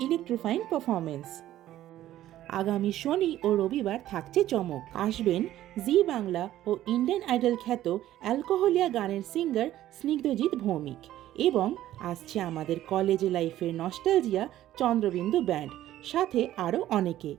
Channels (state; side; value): quieter; left; 13.4 dB